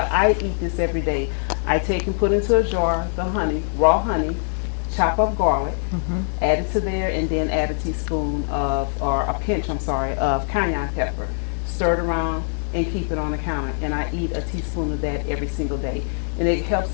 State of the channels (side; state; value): right; silent; 64 dB below the other